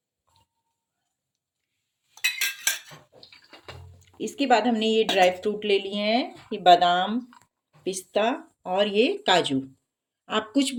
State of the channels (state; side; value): identical; both; correlation 1.00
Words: इसके बाद हमने ये ड्राई फ्रूट ले लिए हैं, ये बादाम, पिस्ता और ये काजू। आप कुछ